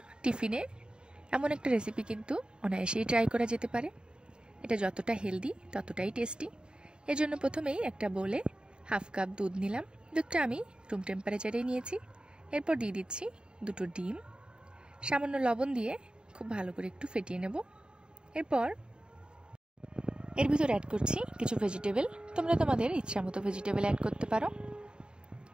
টিফিনে এমন একটা রেসিপি কিন্তু অনায়াসেই ট্রাই করা যেতে পারে। এটা যতটা হেলদি ততটাই টেস্টি। এর জন্য প্রথমেই একটা বোলে হাফ কাপ দুধ নিলাম। দুধটা আমি রুম টেম্পারেচারেই নিয়েছি। এরপর দিয়ে দিচ্ছি দুটো ডিম, সামান্য লবণ দিয়ে খুব ভালো করে একটু ফেটিয়ে নেব। এরপর এর ভিতর অ্যাড করছি কিছু ভেজিটেবল। তোমরা তোমাদের ইচ্ছা মতো ভেজিটেবল অ্যাড করতে পারো।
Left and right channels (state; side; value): late; left; 0.050 ms